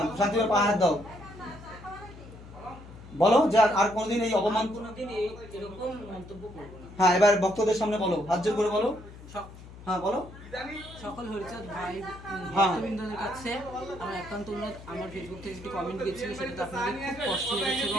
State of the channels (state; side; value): noise; left; hum, 17 dB below the sound